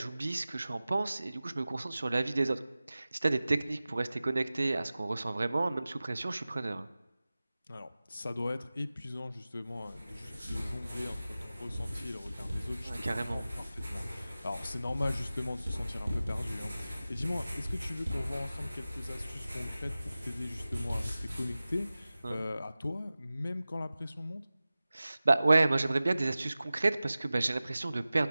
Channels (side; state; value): both; inverted; correlation -0.96